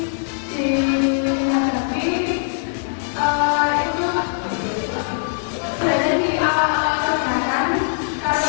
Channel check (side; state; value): right; silent; digital silence